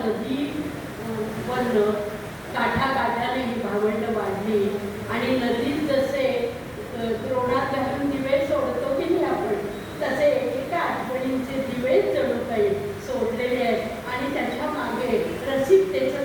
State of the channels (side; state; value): both; identical; correlation 1.00